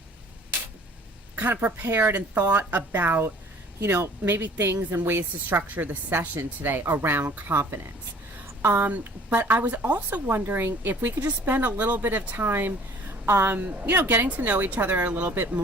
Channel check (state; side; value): normal; both; correlation 0.52